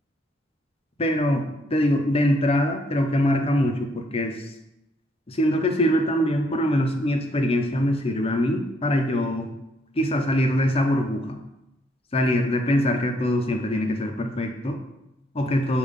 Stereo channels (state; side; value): normal; both; correlation 0.71